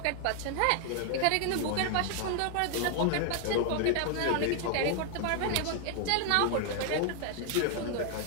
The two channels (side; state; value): both; different; correlation 0.00